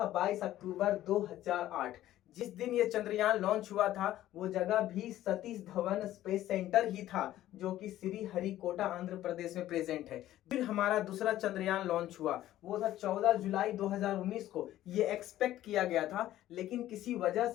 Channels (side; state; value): right; quieter; 13.7 dB